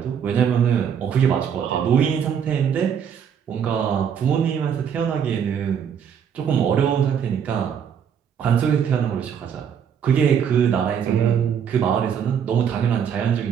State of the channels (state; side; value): quieter; left; 7.9 dB